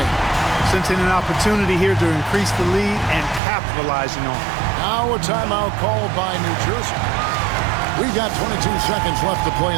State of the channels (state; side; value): drops out; left; at 3.4 s